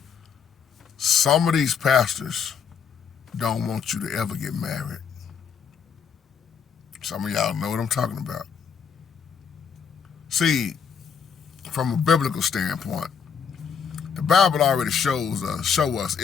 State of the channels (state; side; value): quieter; right; 6.7 dB